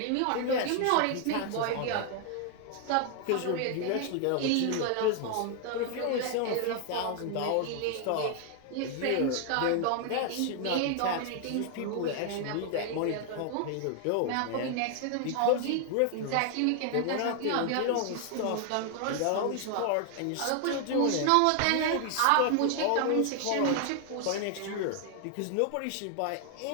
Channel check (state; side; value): different; both; correlation 0.00